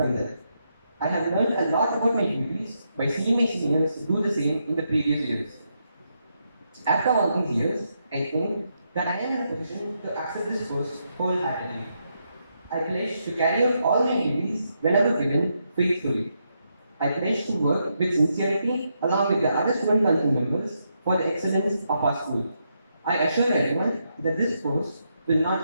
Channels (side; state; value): both; inverted; correlation -0.81